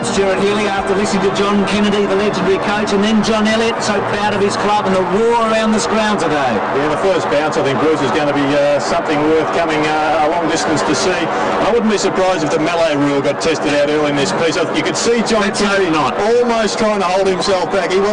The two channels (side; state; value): both; identical; correlation 1.00